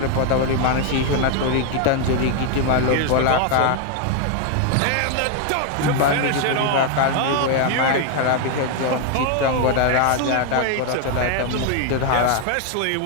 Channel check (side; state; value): both; different; correlation 0.01